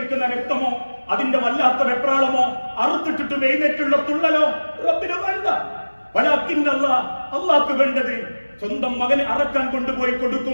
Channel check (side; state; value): both; inverted; correlation -1.00